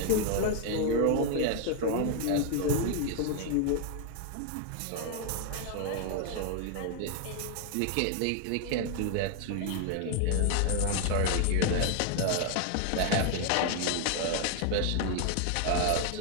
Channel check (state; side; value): different; both; correlation 0.00